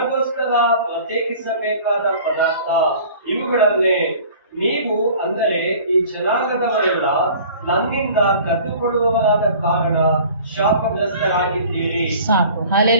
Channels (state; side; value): inverted; both; correlation -0.46